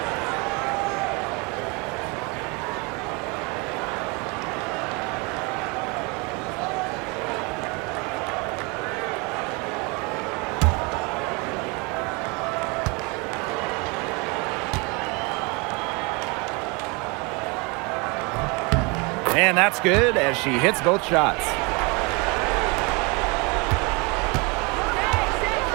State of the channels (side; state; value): left; quieter; 29.1 dB